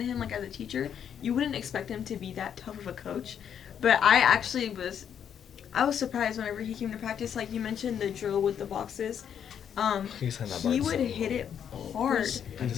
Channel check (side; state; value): right; quieter; 8.6 dB